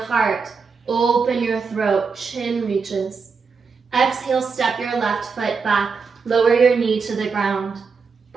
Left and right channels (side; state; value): left; quieter; 5.1 dB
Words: heart, open your throat, chin reaches. Exhale, step your left foot back, lower your knee to the ground,